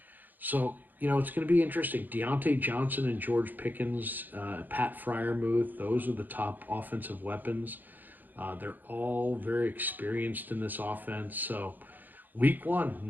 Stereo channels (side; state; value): left; late; 0.086 ms